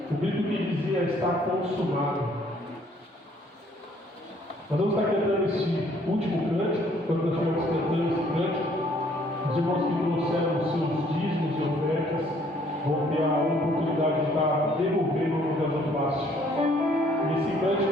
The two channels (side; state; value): both; normal; correlation 0.62